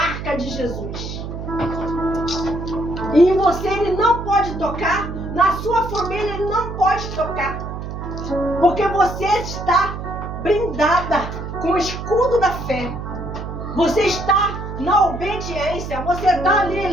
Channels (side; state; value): right; noise; hum, 7 dB below the sound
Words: de Jesus. E em você ele não pode tocar, na sua família ele não pode tocar. Porque você está blindada com o escudo da fé. Você está na obediência, você está ali